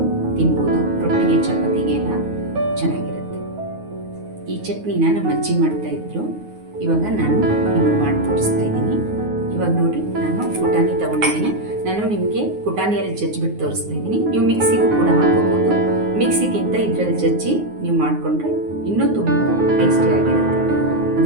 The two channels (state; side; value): late; left; 9.5 ms